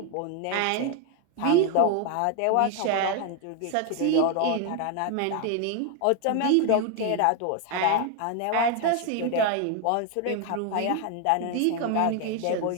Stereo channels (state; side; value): different; both; correlation 0.01